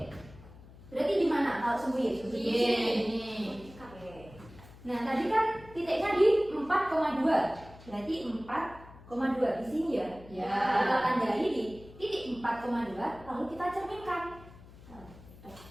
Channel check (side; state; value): left; noise; hum, 20 dB below the sound